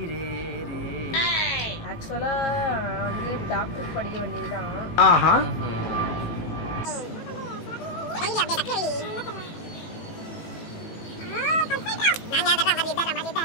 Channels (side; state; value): right; late; 18 ms